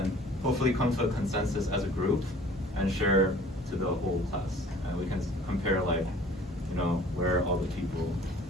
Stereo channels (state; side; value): normal; both; correlation 0.50